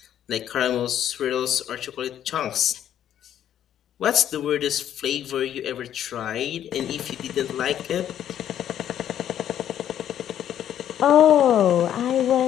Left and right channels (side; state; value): right; quieter; 10.6 dB